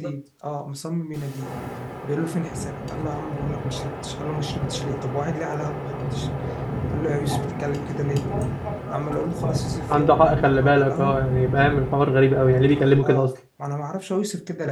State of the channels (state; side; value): identical; both; correlation 1.00